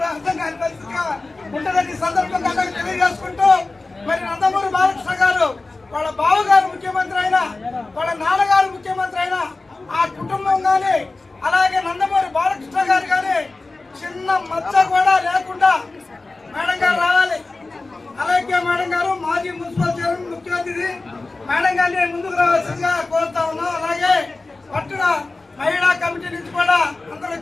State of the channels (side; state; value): right; quieter; 3.4 dB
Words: అర్థం కాని పరిస్థితిగా ఉంటుందని ఈ సందర్భంగా అందరికీ తెలియజేసుకుంటూ, మరి నందమూరి బాలకృష్ణ గారు వాళ్ళ బావగారు ముఖ్యమంత్రి అయినా, వాళ్ళ నాన్నగారు ముఖ్యమంత్రి అయినా ఆ కుటుంబం కానీ అలాగే నందమూరి బాలకృష్ణ గారు కానీ చిన్న మచ్చ కూడా లేకుండా మేడం గారు రావాలి. అలాగే మేడం గారు మాజీ మున్సిపల్ చైర్మన్ ముఖ్య అతిథి మేడం గారిని ముందుకు రావాల్సిందిగా కోరుతా ఉన్నాం. అలాగే పట్టున మహిళా కమిటీ నుంచి కూడా అందరూ